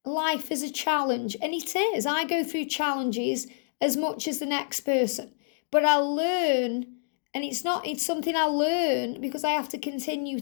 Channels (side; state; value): right; silent; digital silence